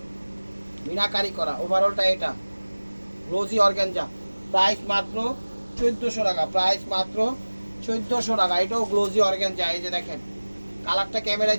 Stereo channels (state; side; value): inverted; both; correlation -1.00